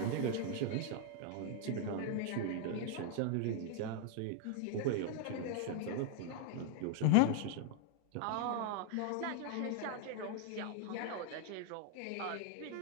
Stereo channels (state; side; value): different; both; correlation 0.00